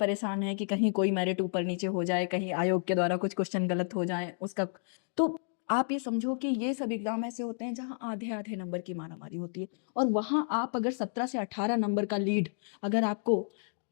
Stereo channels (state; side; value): silent; right; digital silence